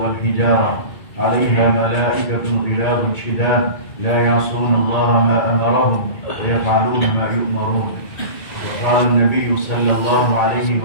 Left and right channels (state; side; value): late; right; 2.3 ms